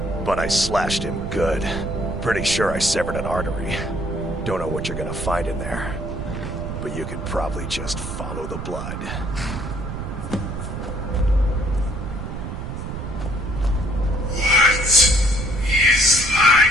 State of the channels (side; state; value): right; noise; rumble, 6 dB below the sound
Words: But I slashed him good. Pretty sure I severed an artery. Don't know what you're gonna find in there. But you can probably just follow the blood. What is